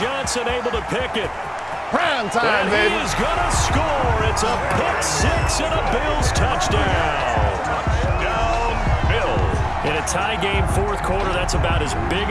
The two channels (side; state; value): both; identical; correlation 1.00